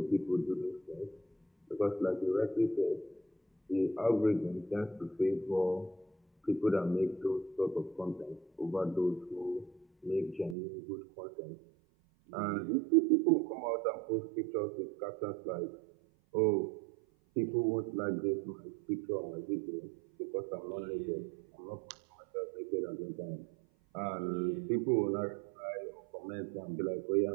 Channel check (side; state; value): left; drops out; at 10.6 s